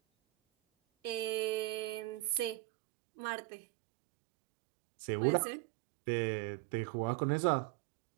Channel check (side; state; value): left; drops out; at 2.6 s